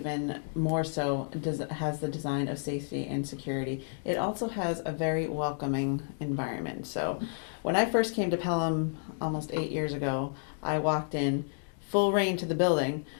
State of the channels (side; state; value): right; silent; digital silence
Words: more so, has the design of safety and security. It also has a very welcoming environment. So when I first came to Pelham almost 8 years ago, I walked in full rain to the building,